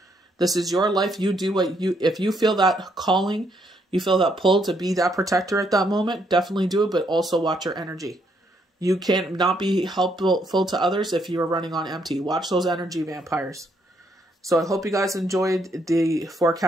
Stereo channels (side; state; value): both; normal; correlation 0.73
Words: This is your life. You do what you, if you feel that calling, you feel that pull to be that protector at that moment, definitely do it, but also watch your energy. You can't not be helpful to others if you are running on empty. Watch those energy vampires. So I hope you guys enjoyed the